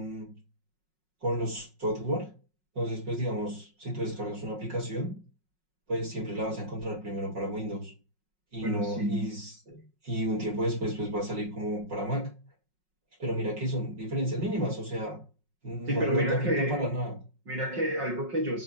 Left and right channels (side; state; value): left; late; 5.4 ms